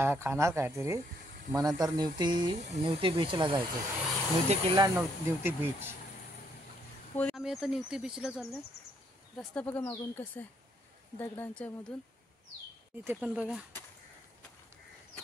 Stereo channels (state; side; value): normal; both; correlation 0.71